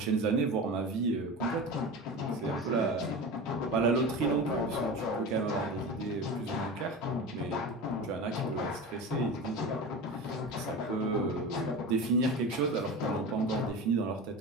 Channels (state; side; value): normal; both; correlation 0.29